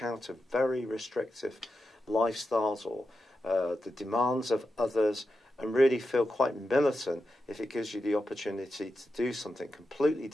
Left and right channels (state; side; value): normal; both; correlation 0.89